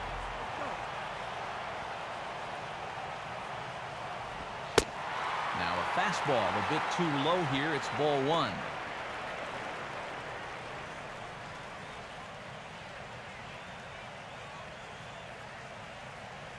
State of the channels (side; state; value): both; identical; correlation 1.00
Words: Now a fastball a bit too low here. It's ball 1.